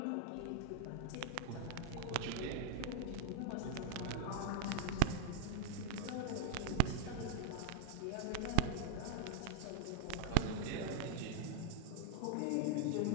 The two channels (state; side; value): different; both; correlation 0.01